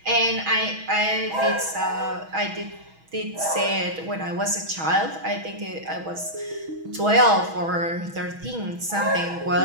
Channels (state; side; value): late; left; 6.2 ms